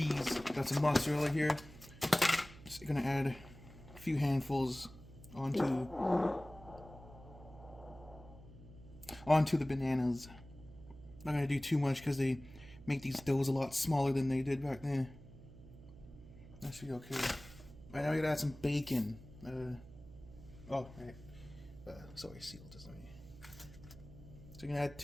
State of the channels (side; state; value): right; noise; hum, 18 dB below the sound